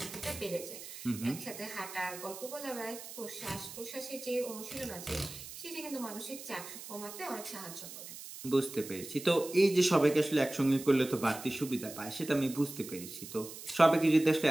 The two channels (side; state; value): right; noise; hiss, 12 dB below the sound